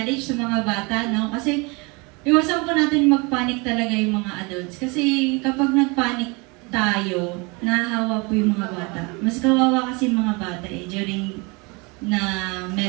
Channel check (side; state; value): left; quieter; 28.4 dB